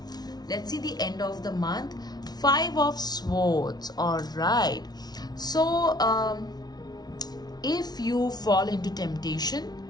Let's see the end of the month. 5 of Swords, all right. So if you fall into temptation,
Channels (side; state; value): right; late; 0.19 ms